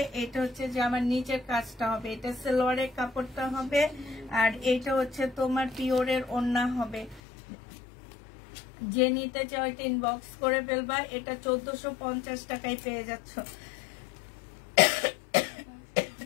এটা হচ্ছে যে আমার নিচের কাজটা হবে, এটা সালোয়ারের কাপড়টা হবে, আর এটা হচ্ছে তোমার পিওরের ওড়না হবে। যে নিতে চাও এটা ইনবক্স করে ফেলবা। এটা 1450 টাকায় পেয়ে যাচ্ছ।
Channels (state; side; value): drops out; right; at 7.2 s